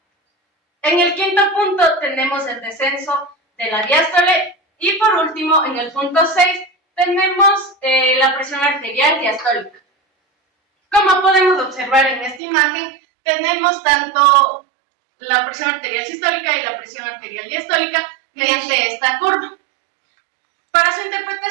En el quinto punto tenemos el descenso de la diástole y por último, en el punto 6, tenemos la presión arterial diastólica. Como podemos observar en esta imagen, tenemos tanto la presión arterial sistólica y la presión arterial diastólica mediante esta curva. Para su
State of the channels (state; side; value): drops out; left; at 12.4 s